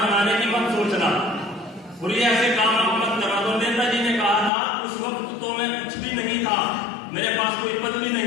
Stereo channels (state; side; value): drops out; right; at 4.5 s